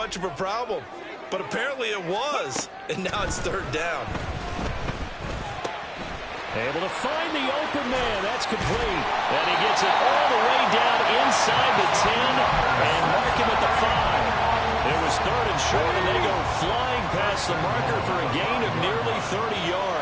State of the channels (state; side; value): identical; both; correlation 1.00